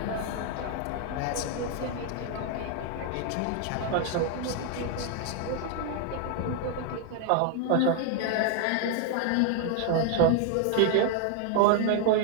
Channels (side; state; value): both; different; correlation 0.00